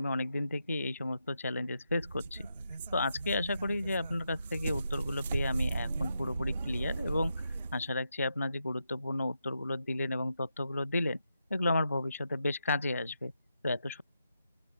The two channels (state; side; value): inverted; both; correlation -0.84